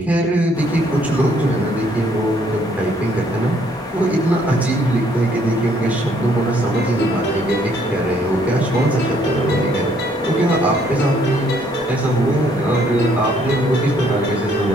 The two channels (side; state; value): both; normal; correlation 0.66